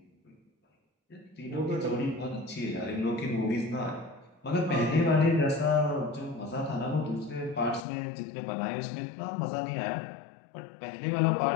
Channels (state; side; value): drops out; right; at 7.9 s